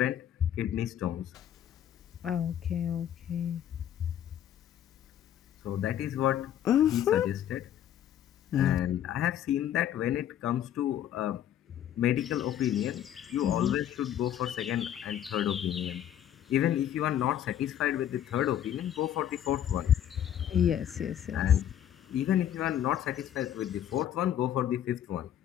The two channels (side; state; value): right; quieter; 10.6 dB